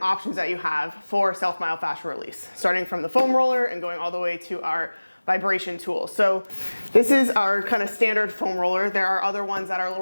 options that you have for self-myofascial release, starting from the foam roller and going all the way to our vibration tool. So this is our kind of standard foam roller. There are other ones that are a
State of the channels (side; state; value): both; inverted; correlation -1.00